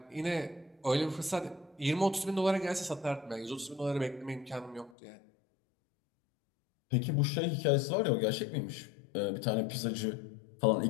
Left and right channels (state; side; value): drops out; right; at 4.9 s